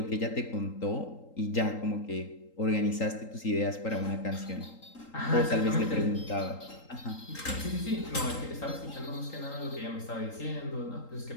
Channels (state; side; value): late; right; 3.8 ms